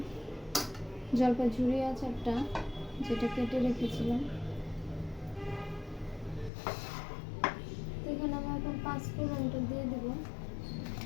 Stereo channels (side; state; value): right; drops out; at 6.5 s